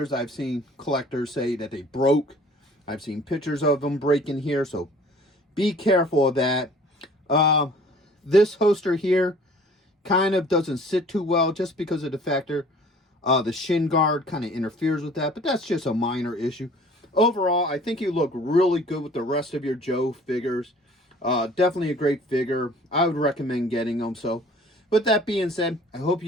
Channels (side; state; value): both; normal; correlation 0.50